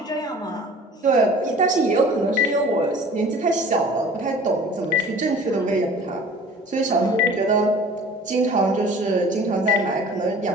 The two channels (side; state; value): both; normal; correlation 0.45